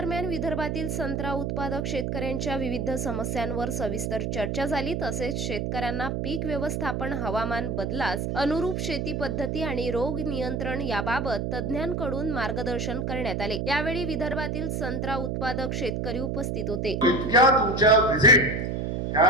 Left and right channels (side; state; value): right; noise; hum, 1 dB below the sound